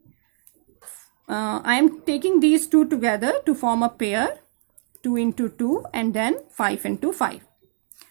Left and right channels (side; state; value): left; silent; digital silence